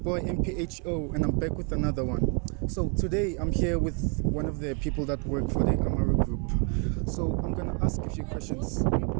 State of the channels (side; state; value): left; quieter; 38.2 dB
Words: MPHO, and I'm back with another one. So today I'm here with one of the people that work for the Amaro group. So I'm gonna ask a few questions.